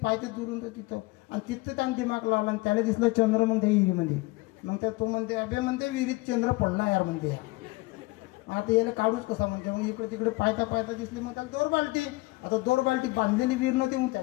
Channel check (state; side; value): quieter; right; 22.5 dB